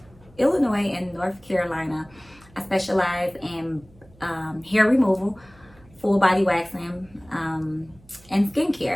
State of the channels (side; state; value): right; noise; hum, 27 dB below the sound